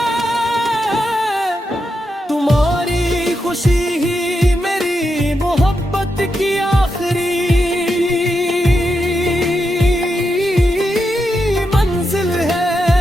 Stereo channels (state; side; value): normal; both; correlation 0.85